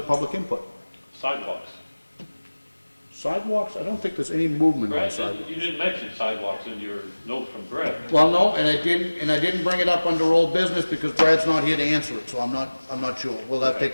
public input? Sidewalks. Sidewalks, I don't think there's any movement on Brad, sidewalks. you didn't mention sidewalks in your note from Brad. Well, no, and I didn't bring it up under old business because Brad's not here to answer it, so I'm not sure. We'll have to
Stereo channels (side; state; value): both; inverted; correlation -1.00